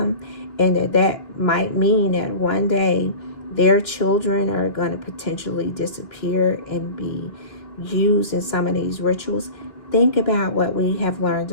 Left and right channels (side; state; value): right; late; 2.9 ms